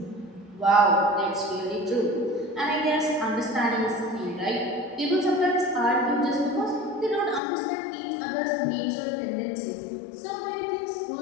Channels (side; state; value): right; drops out; at 7.4 s